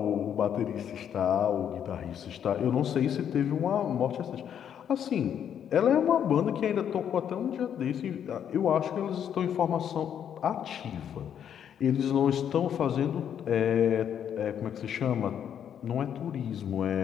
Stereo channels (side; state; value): right; quieter; 9.0 dB